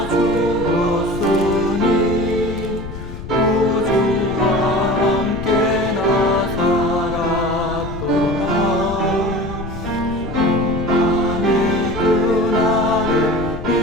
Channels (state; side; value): noise; left; rumble, 10 dB below the sound